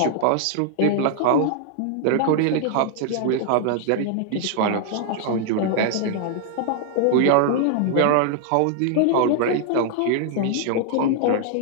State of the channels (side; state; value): both; different; correlation -0.01